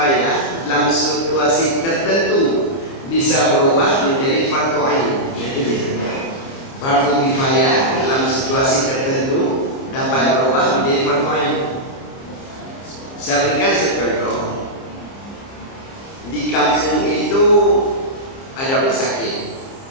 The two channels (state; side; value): late; right; 30 ms